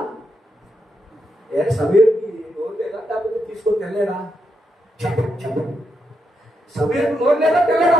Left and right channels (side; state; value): both; normal; correlation 0.82